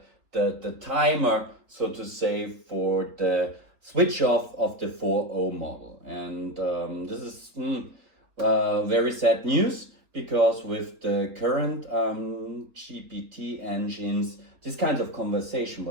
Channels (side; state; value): left; late; 3.8 ms